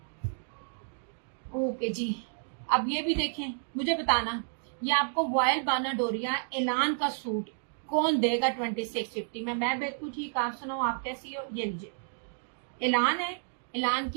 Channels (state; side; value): silent; left; digital silence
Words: ओके जी। अब ये भी देखें, मुझे बताना ये आपको वॉयल बानाडोरिया एलान का सूट कौन देगा 2650 में? मैं बिल्कुल ठीक, आप सुनाओ आप कैसी हो? ये लीजिए, एलान है, एलान